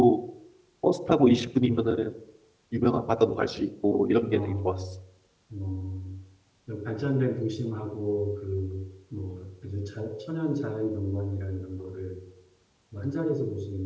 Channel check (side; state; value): both; identical; correlation 1.00